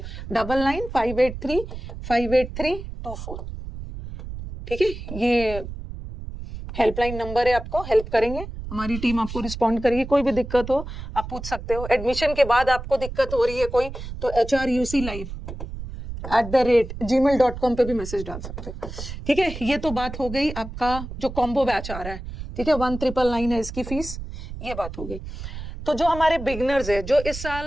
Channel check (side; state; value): right; noise; rumble, 9 dB below the sound